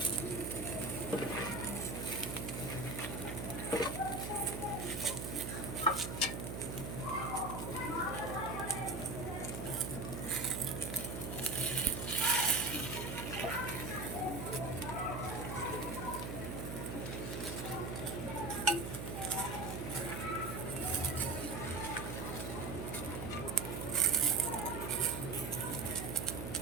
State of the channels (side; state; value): right; noise; hum, 5 dB below the sound